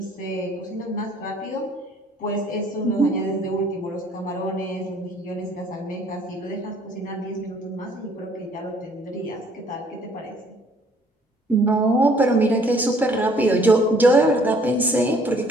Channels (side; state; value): both; normal; correlation 0.59